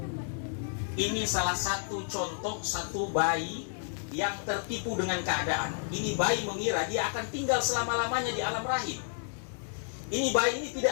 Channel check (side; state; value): right; silent; digital silence